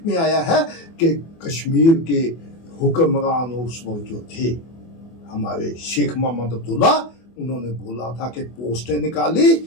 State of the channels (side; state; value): right; late; 24 ms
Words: में आया है कि कश्मीर के हुक्मरान उस वक्त जो थे हमारे शेख मोहम्मद अब्दुल्ला, उन्होंने बोला था कि पोस्टें निकाली